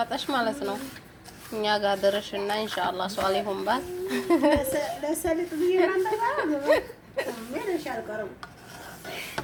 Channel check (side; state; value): both; identical; correlation 1.00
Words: ማለት ነው። እኛ ጋር ድረሽና ኢንሻአላህ ሷሊሁን ባል ለሰሊጥ ቢራንዳ ምን ይሻልቀረው